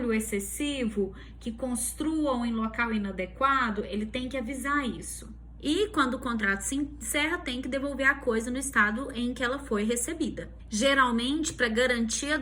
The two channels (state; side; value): identical; both; correlation 1.00